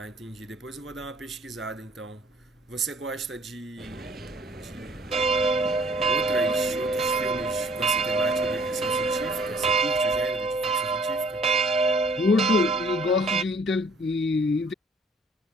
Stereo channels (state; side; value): normal; both; correlation 0.56